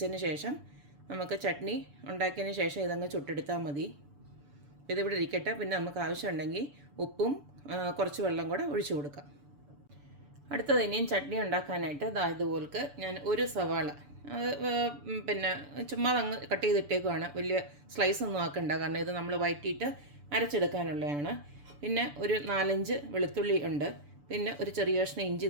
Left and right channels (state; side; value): late; left; 6.9 ms